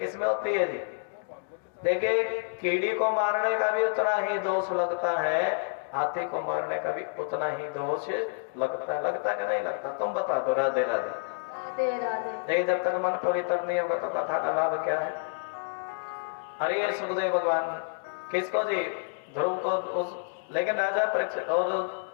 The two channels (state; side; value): silent; right; digital silence